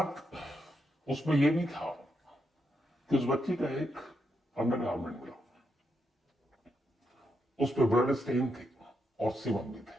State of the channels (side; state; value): both; normal; correlation 0.82